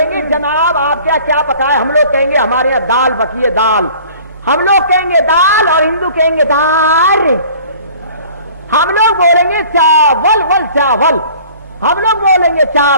जनाब आप क्या क्या पकाए। हम लोग कहेंगे हमारे यहाँ दाल बकी है, दाल। हम लोग कहेंगे दाल और हिंदू कहेंगे दाल। हम लोग बोलेंगे चावल, वल चावल। हम लोग बोलेंगे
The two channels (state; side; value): inverted; both; correlation -0.49